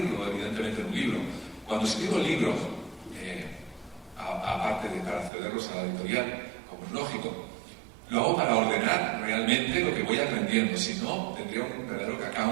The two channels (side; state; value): left; drops out; at 5.3 s